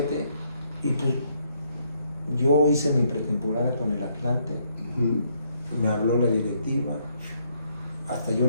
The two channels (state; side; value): inverted; both; correlation -0.72